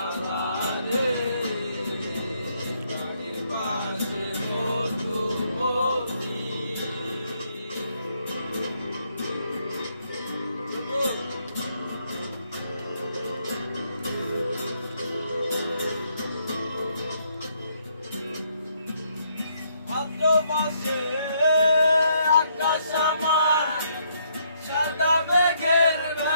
রে বাড়ির পাশে মধুবতী ভাদ্র মাসে আকাশ আমার সাদা মেঘের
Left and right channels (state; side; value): inverted; both; correlation -0.72